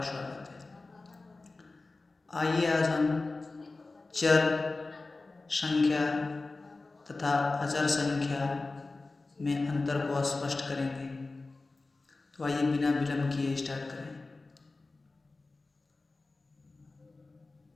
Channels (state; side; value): quieter; right; 3.5 dB